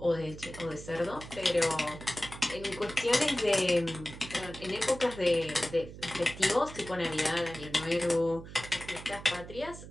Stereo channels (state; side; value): noise; right; hum, 14 dB below the sound